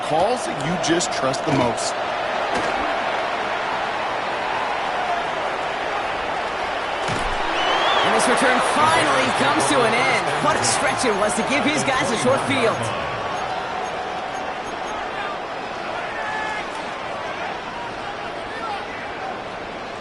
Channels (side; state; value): both; identical; correlation 1.00